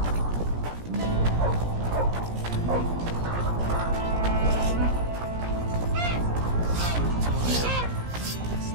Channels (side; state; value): left; late; 17 ms